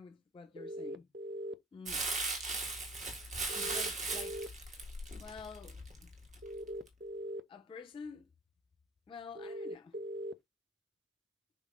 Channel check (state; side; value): normal; both; correlation 0.46